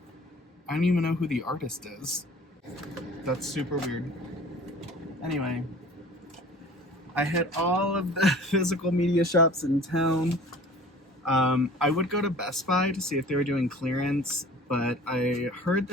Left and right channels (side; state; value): both; normal; correlation 0.45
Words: don't even know who the artist is. That's super weird. Anyway, I hit all of the physical media shops in town. I would go to Best Buy to see if they were doing clearance, but I heard